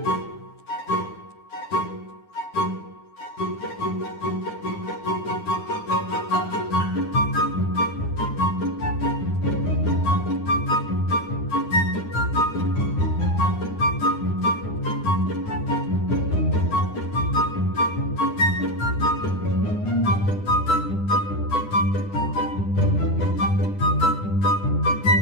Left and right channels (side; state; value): right; late; 9.8 ms